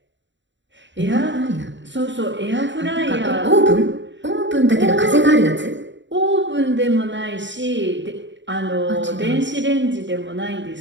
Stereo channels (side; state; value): left; late; 0.54 ms